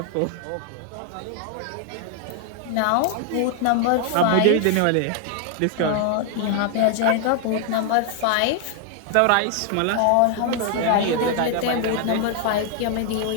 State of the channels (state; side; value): different; both; correlation 0.00